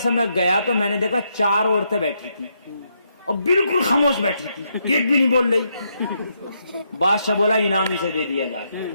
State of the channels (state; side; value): inverted; both; correlation -0.78